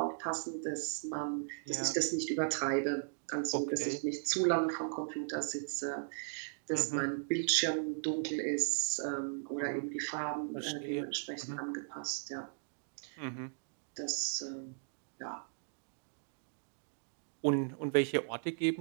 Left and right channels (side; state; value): left; silent; digital silence